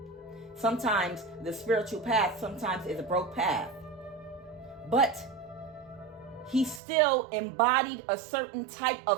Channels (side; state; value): left; drops out; at 6.8 s